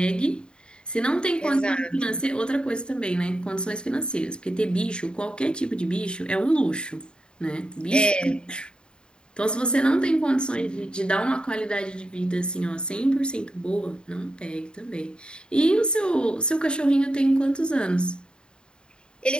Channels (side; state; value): right; late; 0.050 ms